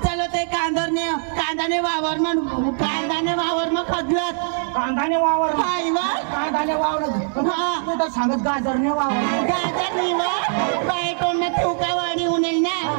चलो ते कांदाने वावर मग खदलत कांदाने वावर हाय वा कांदाने वावर तू तर सांगत गाजरने वावर गाजर निवा बायकोंना ठोकावाडी उनेल ना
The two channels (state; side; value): silent; left; 64 dB below the other